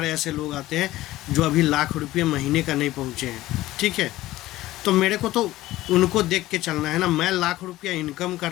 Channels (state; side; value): quieter; right; 16.4 dB